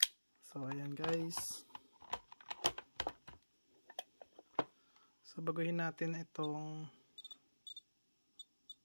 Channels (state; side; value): inverted; both; correlation -1.00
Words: So, ayan guys. So, baguhin natin itong